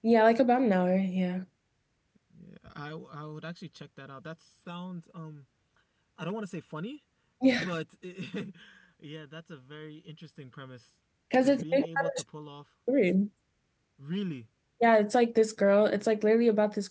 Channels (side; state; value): both; identical; correlation 1.00